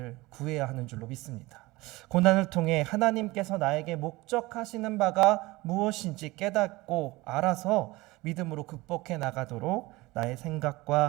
구해야 하는 줄로 믿습니다. 고난을 통해 하나님께서 나에게 목적하시는 바가 무엇인지 깨닫고 알아서 믿음으로 극복해 나가도록 나의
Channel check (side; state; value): left; quieter; 21.0 dB